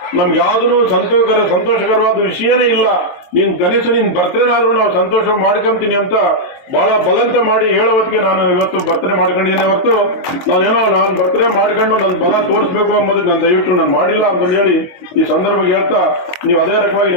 ನಮ್ಗೆ ಯಾವುದೂ ಸಂತೋಷಕರವಾದ ವಿಷಯನೇ ಇಲ್ಲ, ನೀನ್ ಕನಿಷ್ಠ ನಿನ್ ಬರ್ತಡೇನಾದ್ರೂ ನಾವು ಸಂತೋಷ ಮಾಡ್ಕೊಂತೀನಿ ಅಂತ ಬಹಳ ಬಲಂತ ಮಾಡಿ ಹೇಳೋವತ್ತಿಗೆ ನಾನು ಇವತ್ತು ಬರ್ತಡೇ ಮಾಡ್ಕೊಂಡಿದ್ದೀನಿ. ಹೊರತು ನಾನು ಬರ್ತಡೇ ಮಾಡ್ಕೊಂಡು ನನ್ನ ಬಲ ತೋರಿಸ್ಬೇಕು ಅಂಬೋದಕ್ಕೆ ನಾನು ದಯವಿಟ್ಟು ನಾನು ಮಾಡಿಲ್ಲ ಅಂತಂದು ಹೇಳಿ ಈ ಸಂದರ್ಭ ಹೇಳ್ತಾ, ನೀವು ಅದೇ ರಕವಾಗಿ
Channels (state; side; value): late; right; 22 ms